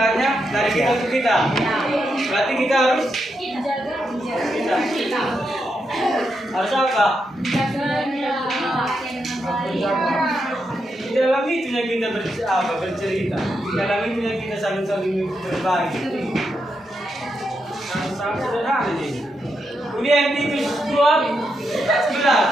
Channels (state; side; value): normal; both; correlation 0.83